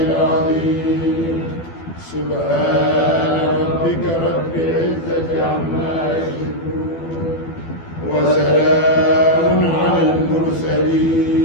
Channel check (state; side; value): late; right; 12 ms